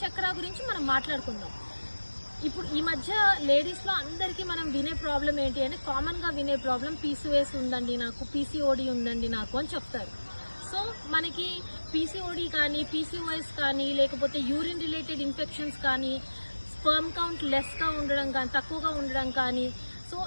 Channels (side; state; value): both; inverted; correlation -1.00